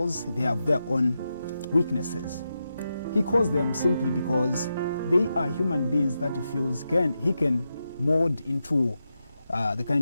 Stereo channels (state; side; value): inverted; both; correlation -0.88